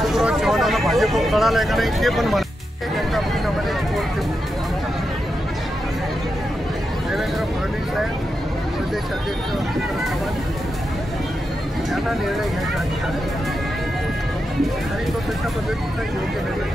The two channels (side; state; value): both; normal; correlation 0.87